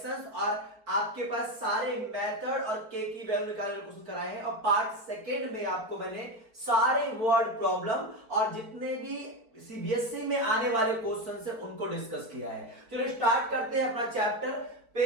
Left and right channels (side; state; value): left; late; 4.3 ms